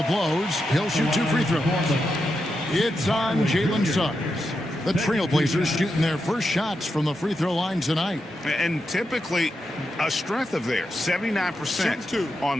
blows. He'll shoot 2 free throws. It's on Jalen Suggs. The Trailblazers shooting their first shots from the free throw line tonight. And typically a strength of theirs, 79% on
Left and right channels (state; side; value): normal; both; correlation 0.86